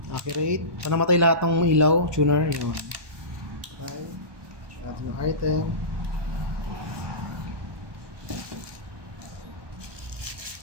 accurate. So, namatay lahat ng ilaw, tuner, yun. Okay. Check natin yung item.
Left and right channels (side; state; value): left; late; 1.2 ms